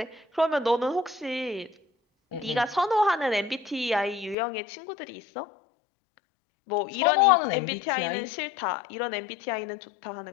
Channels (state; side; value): drops out; right; at 4.4 s